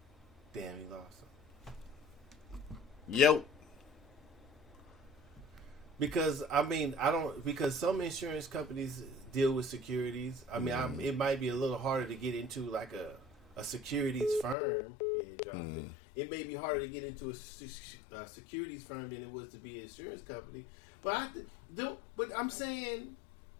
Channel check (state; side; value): drops out; right; at 14.6 s